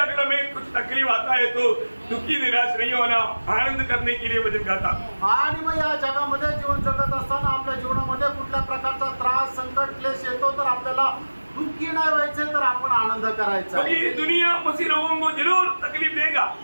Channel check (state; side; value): inverted; both; correlation -1.00